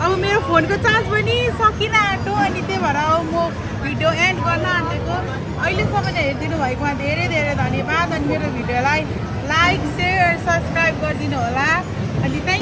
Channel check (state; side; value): identical; both; correlation 1.00